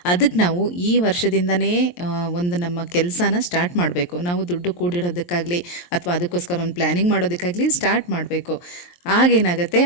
ಅದಕ್ಕೆ ನಾವು ಈ ವರ್ಷದಿಂದನೇ ಒಂದು ನಮ್ಮ ಕೆಲಸನ ಸ್ಟಾರ್ಟ್ ಮಾಡಬೇಕು. ನಾವು ದುಡ್ಡು ಕೂಡಿಡೋದಕ್ಕಾಗಲಿ ಅಥವಾ ಅದಕ್ಕೋಸ್ಕರ ಒಂದು ಪ್ಲ್ಯಾನಿಂಗ್ ಮಾಡೋದಕ್ಕಾಗಲಿ ಸ್ಟಾರ್ಟ್ ಮಾಡಬೇಕು. ಆಗೇನಾಗುತ್ತೆ,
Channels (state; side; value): late; right; 23 ms